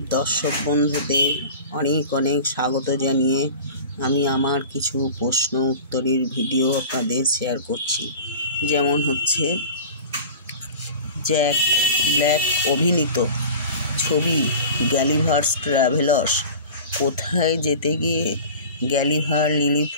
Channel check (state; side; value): inverted; both; correlation -0.37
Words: দর্শক বন্ধুদের অনেক অনেক স্বাগত জানিয়ে আমি আমার কিছু প্রশ্ন উত্তরের ভিডিও আপনাদের শেয়ার করছি। যেমন হচ্ছে, জ্যাক ব্ল্যাক অভিনীত ছবি গালিভার্স ট্রাভেলার্স কোথায় যেতে গিয়ে গালিভার